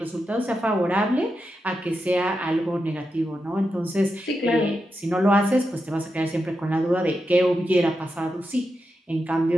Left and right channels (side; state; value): both; normal; correlation 0.88